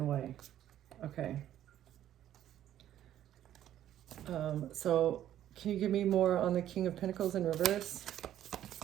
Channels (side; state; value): left; quieter; 11.7 dB